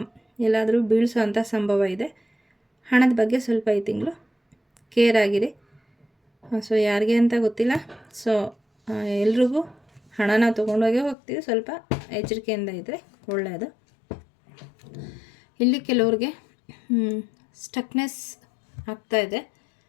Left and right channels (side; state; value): right; drops out; at 11.2 s